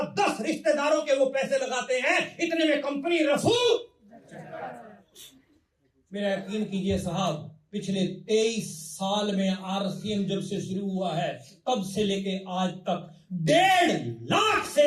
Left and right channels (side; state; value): both; identical; correlation 1.00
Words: 10 रिश्तेदारों के वो पैसे लगाते हैं। इतने में कंपनी रफू। मेरा यकीन कीजिए साहब, पिछले 23 साल में आरसीएम जब से शुरू हुआ है तब से लेके आज तक 1.5 लाख से